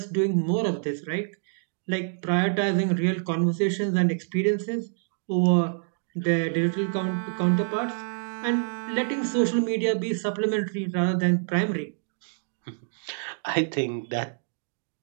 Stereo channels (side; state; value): left; silent; digital silence